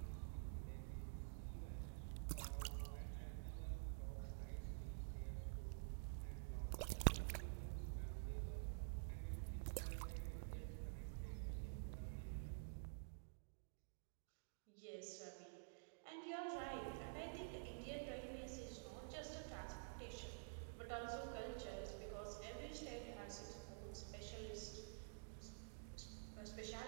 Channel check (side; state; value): left; silent; digital silence